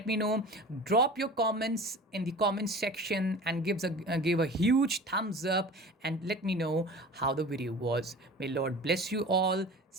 me know. Drop your comments in the comment section and give a huge thumbs up, and let me know how the video was. May Lord bless you all.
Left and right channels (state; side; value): normal; both; correlation 0.38